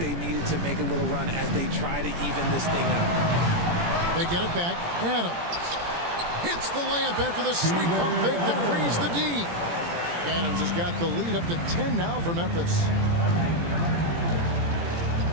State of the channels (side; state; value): left; late; 17 ms